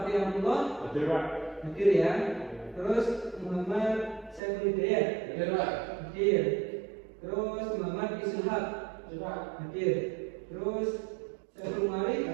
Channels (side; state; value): left; drops out; at 4.4 s